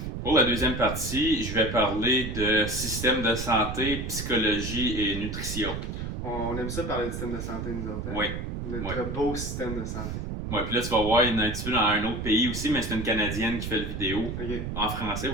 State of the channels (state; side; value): noise; right; rumble, 5 dB below the sound